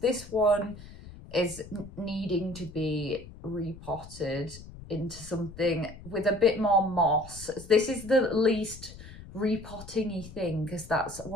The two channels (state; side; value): noise; left; rumble, 16 dB below the sound